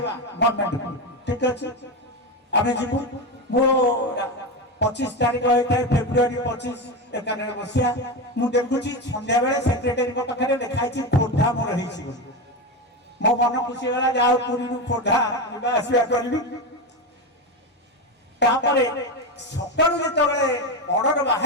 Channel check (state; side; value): normal; both; correlation 0.16